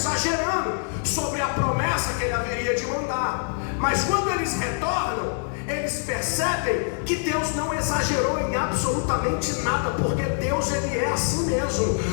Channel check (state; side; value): silent; right; 60 dB below the other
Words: sobre a promessa que Ele haveria de mandar. Mas quando eles retornam, eles percebem que Deus não exagerou em absolutamente nada, porque Deus, Ele é assim mesmo.